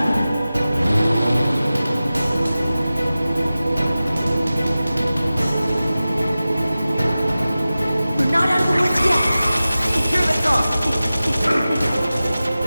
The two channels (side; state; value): both; inverted; correlation -0.96